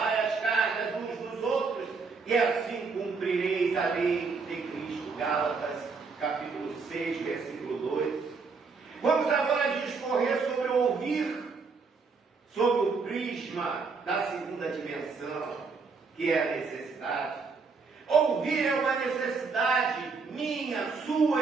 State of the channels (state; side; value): quieter; left; 4.7 dB